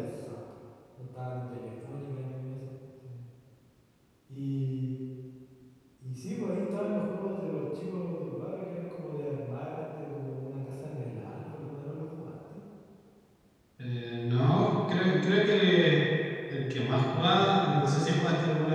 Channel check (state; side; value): identical; both; correlation 1.00